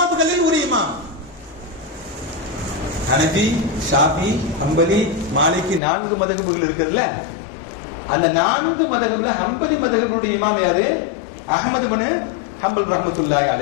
ஒரு இமாம். ஹனஃபி, ஷாஃபி, ஹம்பலி, மாலிகி 4 மதஹபுகள் இருக்குதுல்ல. அந்த 4 மதஹபுல ஹம்பலி மதஹபுடைய இமாம் யாரு? அஹ்மது பின் ஹம்பல் ரஹ்மத்துல்லாஹி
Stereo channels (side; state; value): right; drops out; at 5.8 s